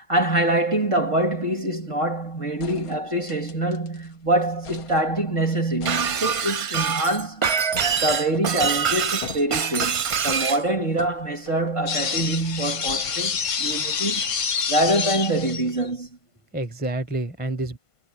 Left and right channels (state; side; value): late; right; 1.5 ms